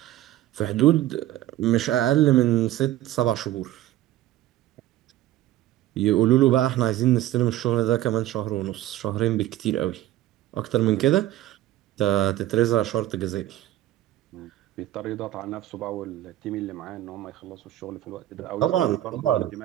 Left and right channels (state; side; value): quieter; left; 14.1 dB